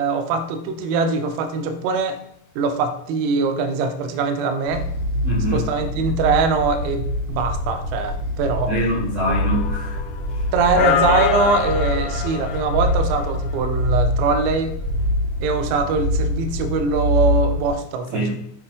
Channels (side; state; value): left; late; 24 ms